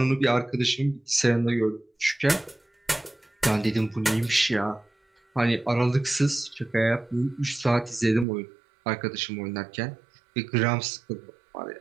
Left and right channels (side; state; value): left; drops out; at 8.2 s